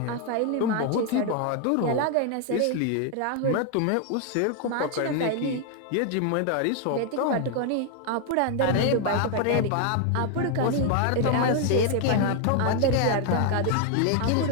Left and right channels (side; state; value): both; different; correlation 0.00